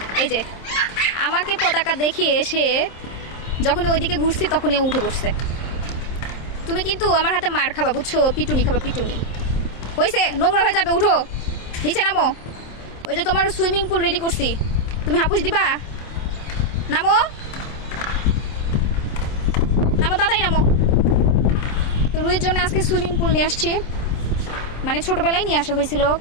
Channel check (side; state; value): right; late; 27 ms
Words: এই যে আমাকে পতাকা দেখিয়ে এসে যখন ওইদিকে ঘুরছি তখনই ও উঠে বসছে। তুমি কিন্তু আমার হাতে মার খাবা, বুঝছো? পিটুনি খাবা, পিটুনি। হয়েছে, নোংরা হয়ে যাবে, উঠো নিচে নামো। ওই যে তোমার সুইমিং পুল রেডি করছি, তুমি হাপুস দিবা। নামো নামো, তাড়াতাড়ি নামো। তো রুহির জন্য আজকে সুইমিং পুল নিয়ে আসছি, মানে ছোটবেলায় নিয়ে আসা হয়েছিল,